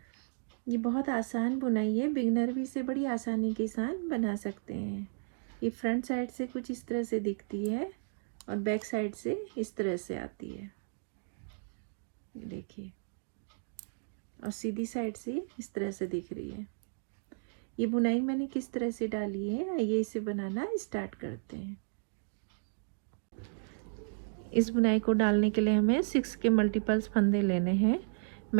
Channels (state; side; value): silent; left; digital silence